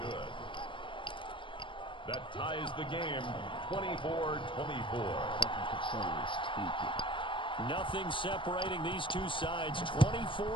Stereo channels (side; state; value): right; late; 0.24 ms